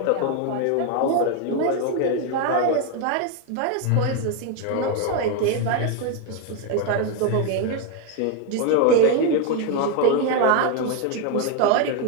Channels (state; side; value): different; both; correlation 0.01